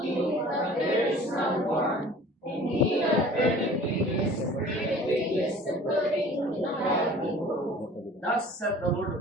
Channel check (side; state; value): both; normal; correlation 0.46